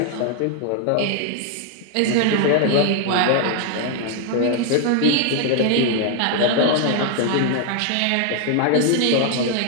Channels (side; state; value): both; different; correlation 0.00